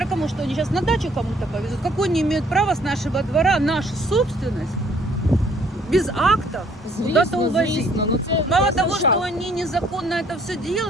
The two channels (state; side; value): normal; both; correlation 0.62